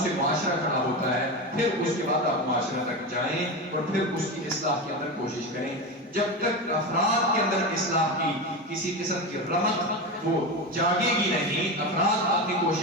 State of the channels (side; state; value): both; normal; correlation 0.20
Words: سے معاشرہ کھڑا ہوتا ہے. پھر اس کے بعد آپ معاشرہ تک جائیں اور پھر اس کی اصلاح کے اندر کوشش کریں. جب تک افراد کے اندر اصلاح کی کسی قسم کی رمق وہ جاگے گی نہیں, افراد اپنی